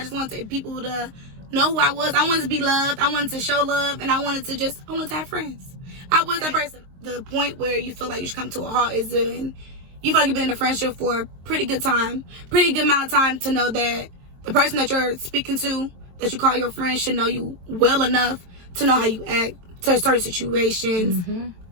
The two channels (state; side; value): late; left; 22 ms